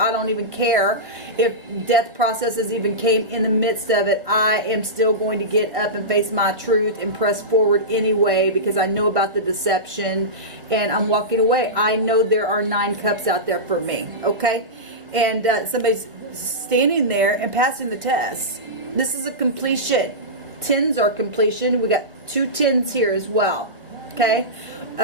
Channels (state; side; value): late; left; 1.7 ms